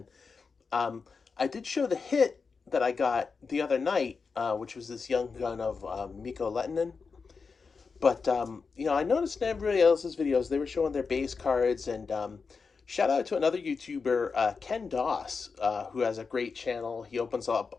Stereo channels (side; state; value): right; quieter; 5.0 dB